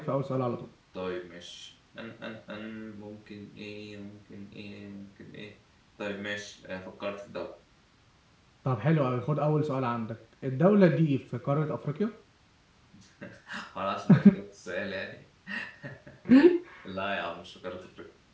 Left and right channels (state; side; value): identical; both; correlation 1.00